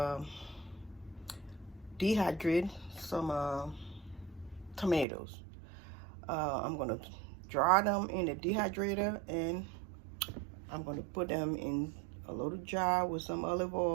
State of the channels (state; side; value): drops out; left; at 5.1 s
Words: dehydrate some tomatoes. I'm gonna dry them in the dehydrator and I'm gonna put them in a little jar with some olive